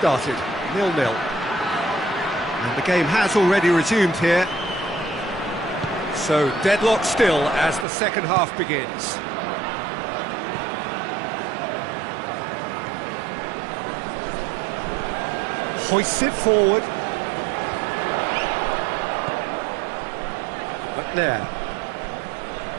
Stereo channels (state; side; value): drops out; left; at 7.9 s